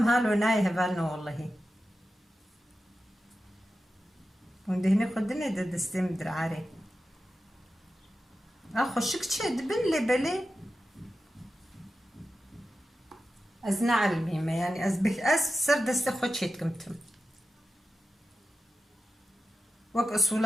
هالو ناي هفالنو والله وندهني خدني دستم درعاري اخو شكتشي دبن لي بلي ازنا علميمة يعني ازبك سر دست خوشيت كمتم وك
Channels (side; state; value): both; normal; correlation 0.92